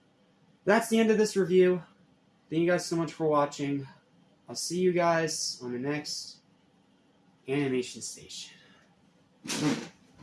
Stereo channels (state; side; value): identical; both; correlation 1.00